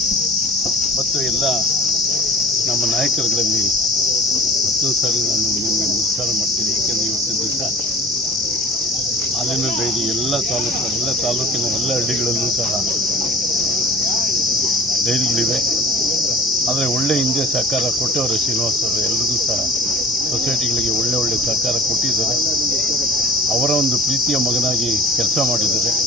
ಮತ್ತು ಎಲ್ಲ ನಮ್ಮ ನಾಯಕರುಗಳಲ್ಲಿ ಮತ್ತೊಂದು ಸಾರಿ ನಾನು ನಿಮಗೆ ನಮಸ್ಕಾರ ಮಾಡ್ತೀನಿ. ಏಕೆಂದರೆ ಇವತ್ತಿನ ದಿವಸ ಹಾಲಿನ ಡೈರಿ ಎಲ್ಲ ತಾಲೂಕಿನ ಎಲ್ಲ ಹಳ್ಳಿಗಳಲ್ಲೂ ಸಹ ಡೈರಿಗಳಿವೆ. ಆದರೆ ಒಳ್ಳೆ ಹಿಂದೆ ಸಹಕಾರ ಕೊಟ್ಟವರು ಶ್ರೀನಿವಾಸ್ ಅವರು. ಎಲ್ರಿಗೂ ಸಹ ಸೊಸೈಟಿಗಳಿಗೆ ಒಳ್ಳೆ ಸಹಕಾರ ಕೊಟ್ಟಿದ್ದಾರೆ. ಅವರ ಒಂದು ಪ್ರೀತಿಯ ಮಗನಾಗಿ ಕೆಲಸ ಮಾಡಿದ್ದಾರೆ.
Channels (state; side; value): normal; both; correlation 0.40